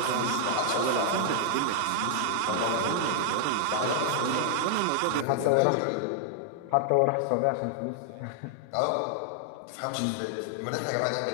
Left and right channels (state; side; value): different; both; correlation 0.00